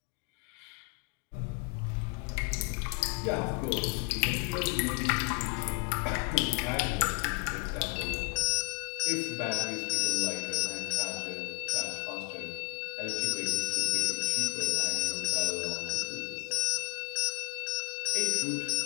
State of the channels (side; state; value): right; quieter; 32.6 dB